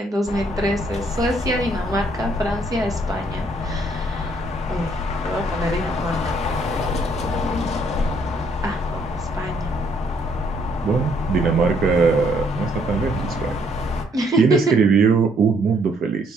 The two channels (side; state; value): both; normal; correlation 0.68